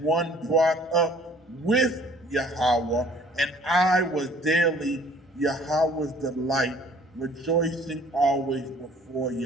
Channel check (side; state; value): both; normal; correlation 0.55